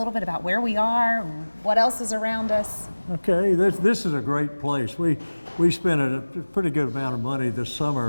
bit about where we are, what else is around us. Okay, this is a great place. We spent a pretty good amount of money this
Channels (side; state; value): both; inverted; correlation -1.00